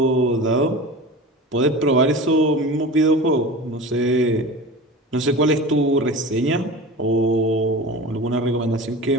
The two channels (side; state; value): both; normal; correlation 0.33